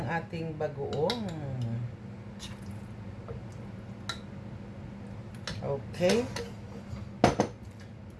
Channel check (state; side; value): identical; both; correlation 1.00